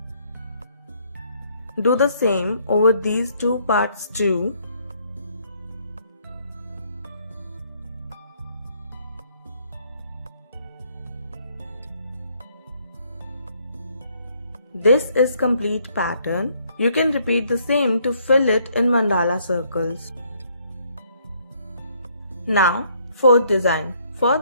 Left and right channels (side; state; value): both; inverted; correlation -0.67